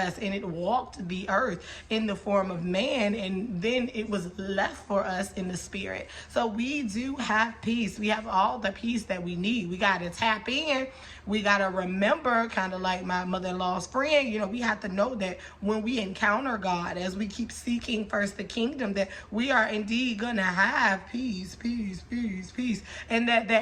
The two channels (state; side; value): identical; both; correlation 1.00